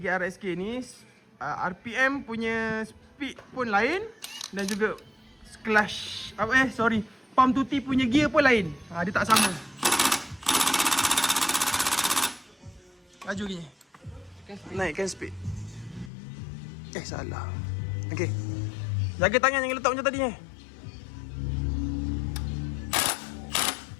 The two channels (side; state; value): right; drops out; at 16.1 s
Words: RSK ni, RPM punya speed pun lain dan juga clutch pump tuti punya gear pun lain. Dia tak sama. Laju gini. Naikkan speed. Salah. Okey. Jaga tangan jangan letak macam tadi